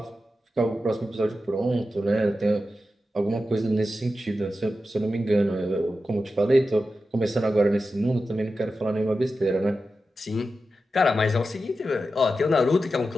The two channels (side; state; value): both; normal; correlation 0.91